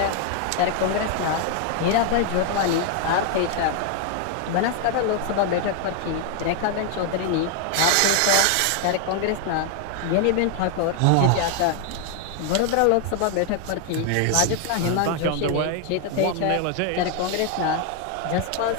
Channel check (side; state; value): both; different; correlation 0.00